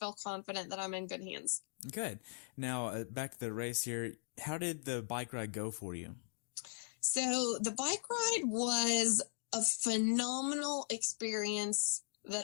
confident that I'm in good hands. Good. Now, back to the race here. How did the bike ride go for you? So the bike ride was a phenomenal experience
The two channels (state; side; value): silent; right; digital silence